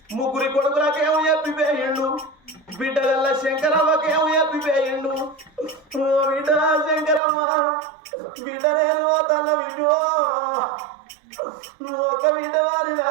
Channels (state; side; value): drops out; left; at 7.2 s